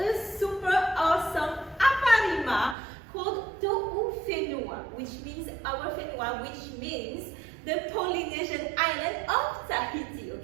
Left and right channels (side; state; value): left; drops out; at 2.8 s